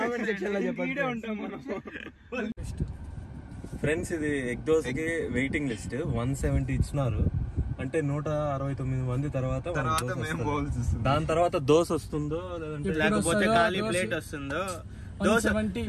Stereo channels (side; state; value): both; identical; correlation 1.00